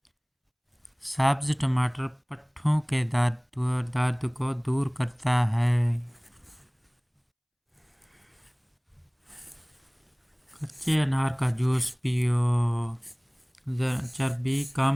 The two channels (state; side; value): identical; both; correlation 1.00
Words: سبز ٹماٹر پٹھوں کے درد کو دور کرتا ہے۔ کچے انار کا جوس پیو، چربی